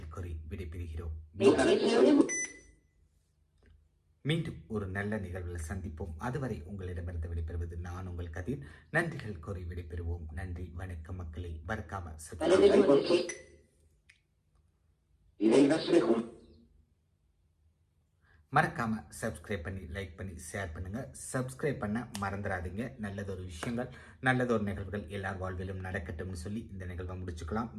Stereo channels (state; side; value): identical; both; correlation 1.00